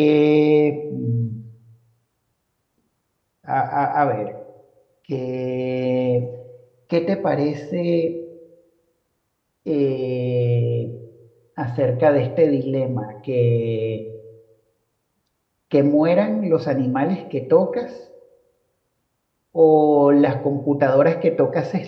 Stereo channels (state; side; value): identical; both; correlation 1.00